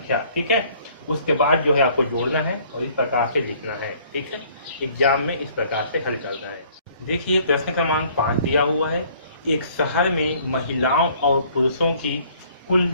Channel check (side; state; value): both; inverted; correlation -0.58